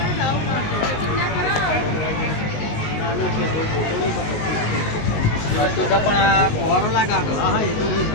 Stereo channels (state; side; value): late; right; 19 ms